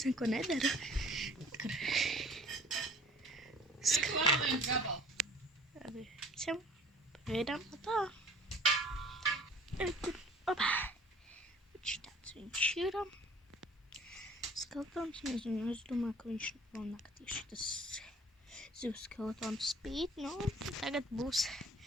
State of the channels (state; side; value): normal; both; correlation 0.50